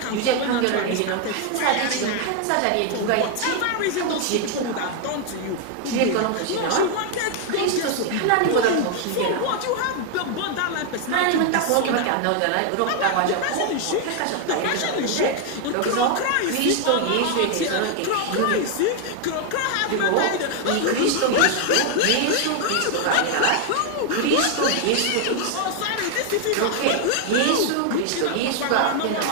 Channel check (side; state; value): both; different; correlation 0.00